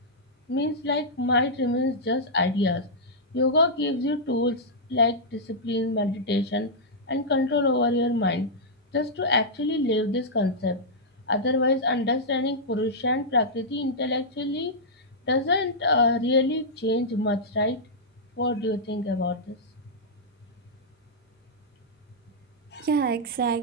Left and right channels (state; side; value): normal; both; correlation -0.09